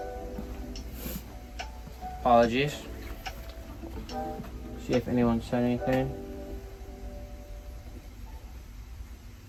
Apologies. See if anyone said anything.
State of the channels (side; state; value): both; identical; correlation 1.00